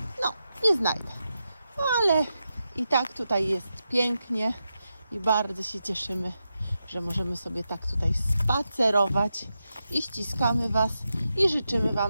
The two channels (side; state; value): both; inverted; correlation -0.88